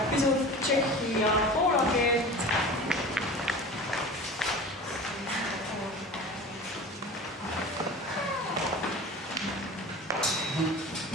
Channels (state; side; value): normal; both; correlation 0.36